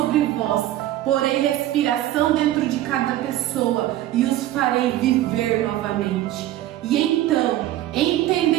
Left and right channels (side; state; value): left; quieter; 14.0 dB